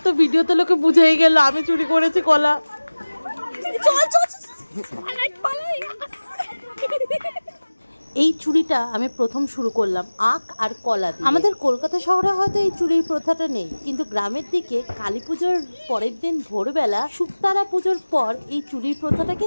তো ভিডিওতে লোকে বুঝেই গেল আমি চুরি করেছি কলা। এই চুরিটা আমি প্রথম শুরু করলাম আখ আর কলা দিয়ে। আমাদের কলকাতা শহরে হয়তো এই চুরির প্রথাটা নেই, কিন্তু গ্রামের দিকে কালী পুজোর পরের দিন ভোরবেলা শুকতারা পুজোর পর এই চুরির প্রথাটা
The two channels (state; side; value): inverted; both; correlation -1.00